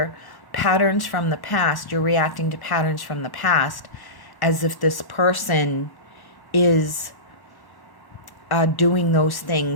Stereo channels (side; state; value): right; late; 1.1 ms